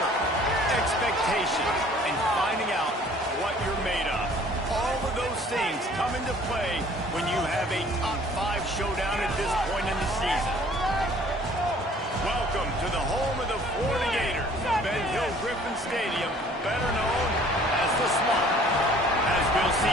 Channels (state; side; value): normal; both; correlation 0.54